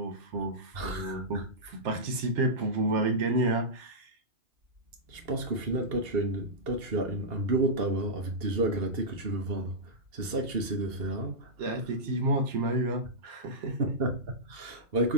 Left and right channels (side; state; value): left; late; 2.7 ms